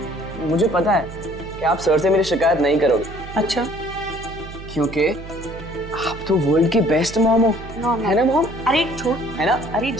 मुझे पता है कि आप सर से मेरी शिकायत नहीं करोगे। अच्छा? क्योंकि आप तो वर्ल्ड की बेस्ट मॉम हो, है ना मॉम? अरे छोड़, है ना? अरे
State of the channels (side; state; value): right; noise; hum, 13 dB below the sound